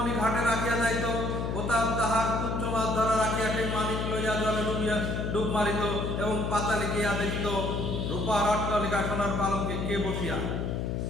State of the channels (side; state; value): left; noise; hum, 1 dB below the sound